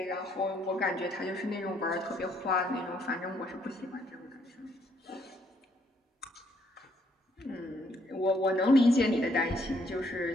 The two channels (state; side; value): normal; both; correlation 0.69